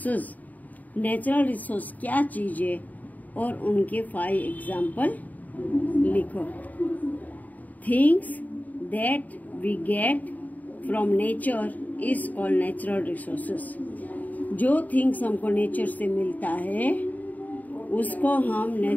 Natural resource क्या चीज है और उनके 5 एग्जाम्पल लिखो. Things that we get from nature is called natural resources. जो थिंग्स हमको नेचर से मिलता है उसको हम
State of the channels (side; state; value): right; late; 0.078 ms